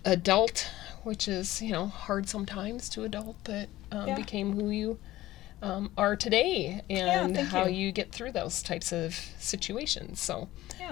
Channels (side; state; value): right; quieter; 16.0 dB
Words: adult, which is hard sometimes to adult, but became who you are today, and how you get through those types of situations. So